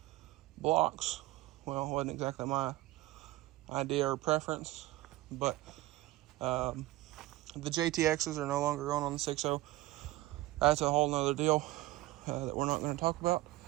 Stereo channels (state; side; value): quieter; left; 17.7 dB